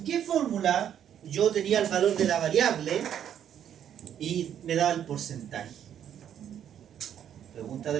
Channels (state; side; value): quieter; left; 9.6 dB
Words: qué fórmula yo tenía el valor de la variable y me daba el porcentaje? Pregunta de